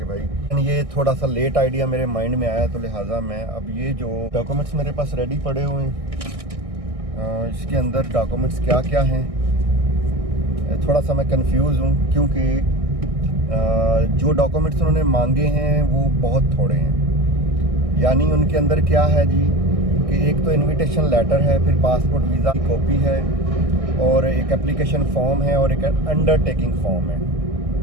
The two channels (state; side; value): late; left; 1.6 ms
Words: भाई ये थोड़ा सा लेट आइडिया मेरे माइंड में आया, तो लिहाजा मैं अब ये जो डॉक्यूमेंट्स मेरे पास रेडी पड़े हुए हैं, इसके अंदर डॉक्यूमेंट्स क्या क्या हैं, थोड़ा सा मैं कंफ्यूज हूँ क्योंकि जो डॉक्यूमेंट्स उन्होंने मांगे हैं वो बहुत थोड़े हैं। यानी उनके अंदर क्या है जी कि एक तो इनविटेशन लेटर है, फिर पासपोर्ट वीज़ा की कॉपी है, और एक एप्लीकेशन फॉर्म है, और एक अंडरटेकिंग फॉर्म है।